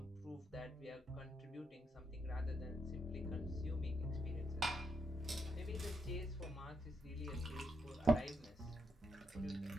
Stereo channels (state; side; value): normal; both; correlation 0.80